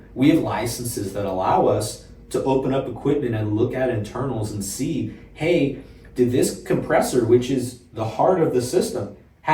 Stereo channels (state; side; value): identical; both; correlation 1.00